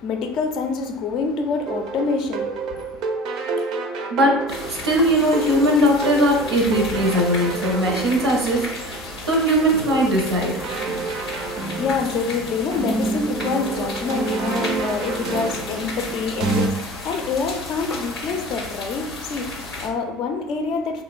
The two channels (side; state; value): both; normal; correlation 0.39